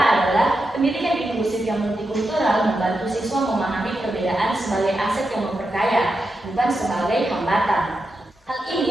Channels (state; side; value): normal; both; correlation 0.87